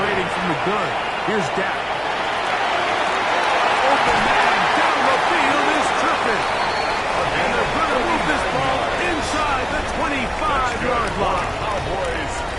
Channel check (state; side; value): identical; both; correlation 1.00